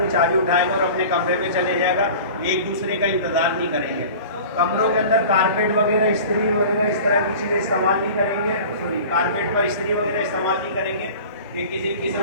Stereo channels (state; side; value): inverted; both; correlation -0.40